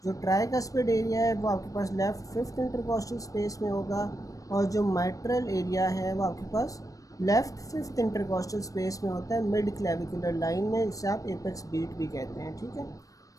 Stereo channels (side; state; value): right; late; 0.16 ms